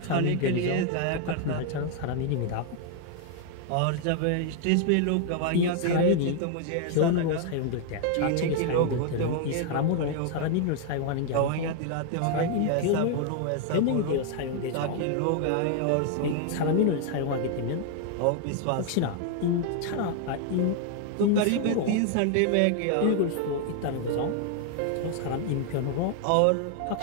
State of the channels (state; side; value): different; both; correlation 0.00